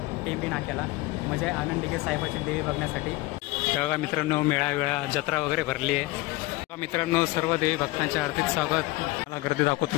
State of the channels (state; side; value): quieter; right; 20.6 dB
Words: टेंबी नाक्याला, म्हणजे आनंद दिघे साहेबाची देवी बघण्यासाठी. बघा मित्रांनो, मेळा जत्रा वगैरे भरली आहे. मित्रांनो, सर्व देवी भक्तांच्या हार्दिक स्वागत. मला गर्दी